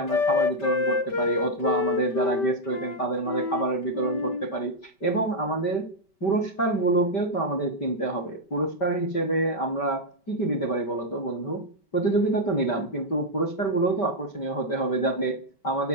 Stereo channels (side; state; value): right; late; 5.2 ms